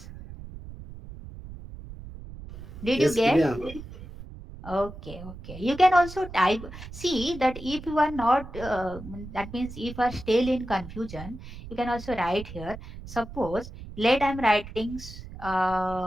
Did you Yes, get? clear. Okay, okay. You can also type. See that if you are not, that means if you are still in confusion, you can also write here. Suppose, let I'm writing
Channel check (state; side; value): noise; right; rumble, 13 dB below the sound